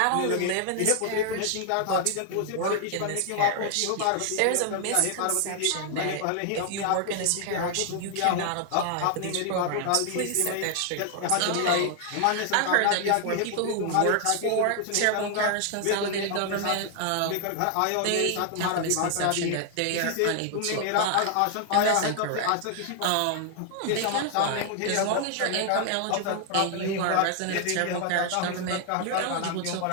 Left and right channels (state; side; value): different; both; correlation 0.00